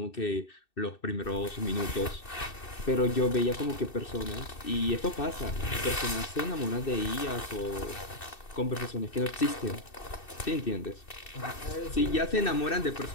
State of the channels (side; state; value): right; late; 2.6 ms